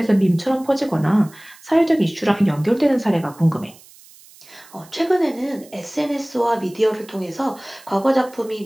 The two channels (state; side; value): noise; right; hiss, 24 dB below the sound